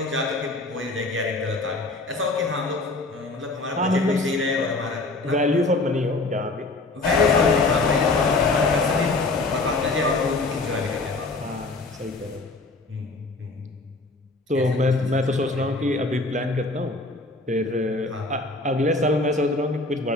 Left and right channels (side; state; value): right; quieter; 3.2 dB